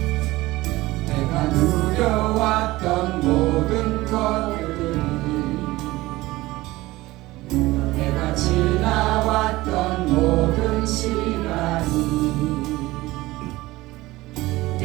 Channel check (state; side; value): quieter; left; 18.9 dB